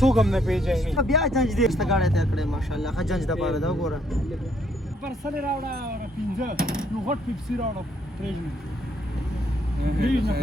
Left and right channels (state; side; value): normal; both; correlation 0.69